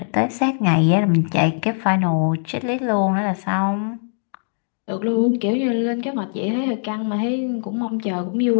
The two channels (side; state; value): right; silent; digital silence